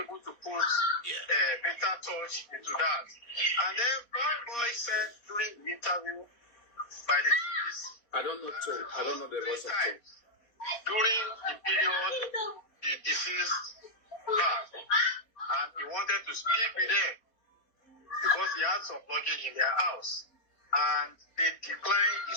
to put better touch into that. And then Prime Boy said during the interview by the police, I don't know Tom. I don't know the voice of Tom. during the period the deceased had, and he wanted to speak with them because he had some luggage in their house, and they declined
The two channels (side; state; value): right; late; 4.2 ms